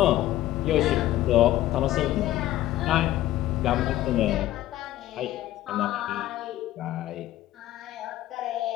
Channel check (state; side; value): quieter; right; 14.3 dB